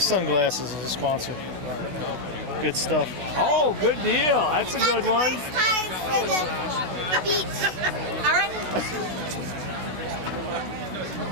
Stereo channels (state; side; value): late; left; 16 ms